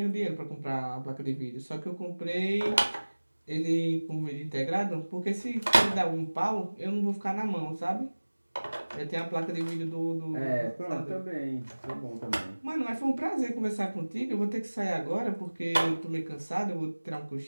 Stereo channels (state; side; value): inverted; both; correlation -1.00